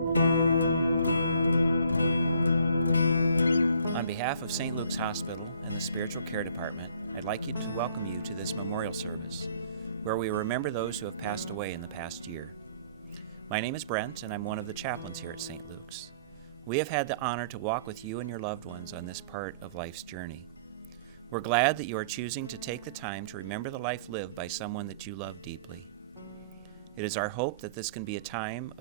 behalf of St. Luke's Hospital and the Spiritual Care Department, I'd like to welcome you to this memorial service, where we remember those who have passed away in the past year. My name is Brent, and I'm one of the chaplains here at St. Luke's. We have had the honor to walk with you and your loved ones on this part of life's journey. We're glad that you are choosing to take the time to remember the life lived by someone that you love deeply. It is our hope that this can be a time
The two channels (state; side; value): inverted; both; correlation -0.55